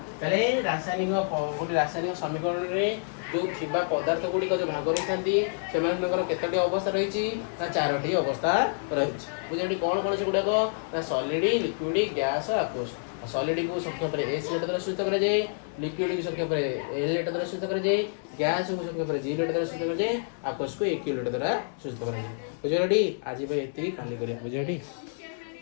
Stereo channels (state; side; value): silent; right; digital silence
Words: है रासायनिक गोटे रासायनिक समीकरण में जो थी पदार्थ गुड़िक जो भाग रही था केतोटी अवस्था रही ना चारोटी अवस्था रही बुझे कौन कौन से गुड़ाक ना सॉलिड लिक्विड गैस आक्वस सॉलिड को संक्षेप में एस लेटर द्वारा सूचित कराए लिक्विड को संक्षेप में एल लेटर द्वारा सूचित कराए गैस को संक्षेप में जी लेटर द्वारा सूचित कराए आक्वस को एक लेटर द्वारा सूचित कराए बुझे आज ये काली बुझे